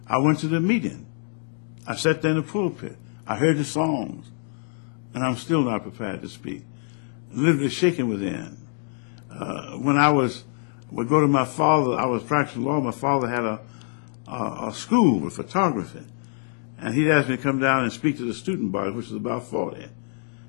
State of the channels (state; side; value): silent; right; 59 dB below the other